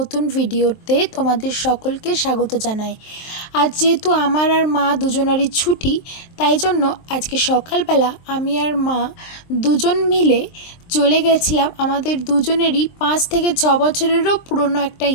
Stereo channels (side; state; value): right; late; 23 ms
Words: ভিডিওতে তোমাদের সকলকে স্বাগত জানাই। আজ যেহেতু আমার আর মা দুজনারই ছুটি, তাই জন্য আজকে সকালবেলা আমি আর মা দুজন মিলে চলে গেছিলাম আমাদের দুজনেরই 5 থেকে 6 বছরেরও পুরনো একটা